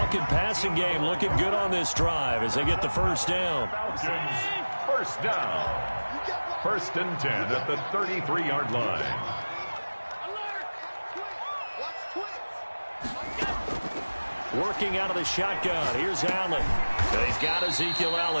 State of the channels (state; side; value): inverted; both; correlation -1.00